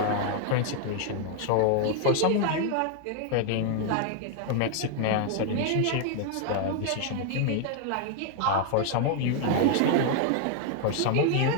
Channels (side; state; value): both; different; correlation 0.00